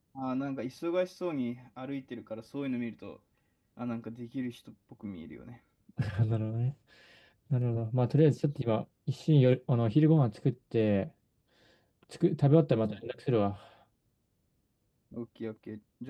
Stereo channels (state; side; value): identical; both; correlation 1.00